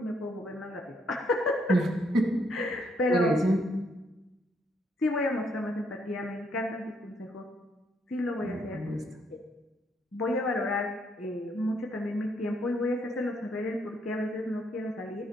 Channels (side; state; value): both; normal; correlation 0.72